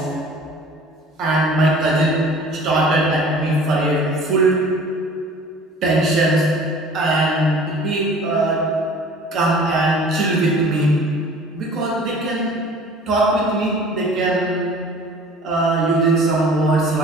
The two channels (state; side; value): normal; both; correlation 0.47